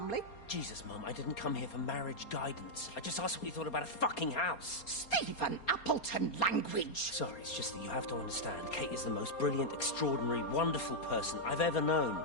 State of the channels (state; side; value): late; right; 4.3 ms